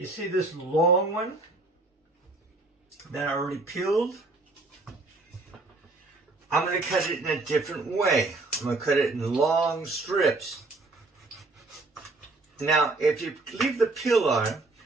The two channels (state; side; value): quieter; left; 3.2 dB